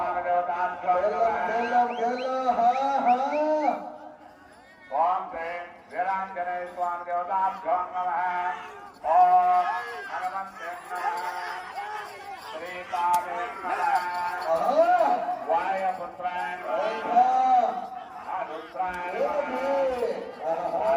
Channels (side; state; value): both; identical; correlation 1.00